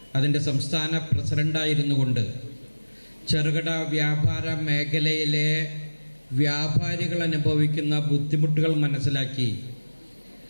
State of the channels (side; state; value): both; inverted; correlation -1.00